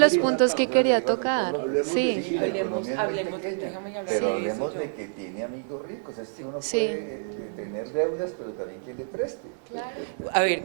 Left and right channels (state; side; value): silent; left; 60 dB below the other